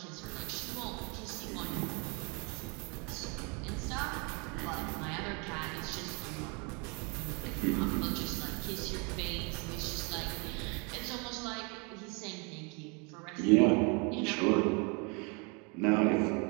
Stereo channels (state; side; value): quieter; left; 32.5 dB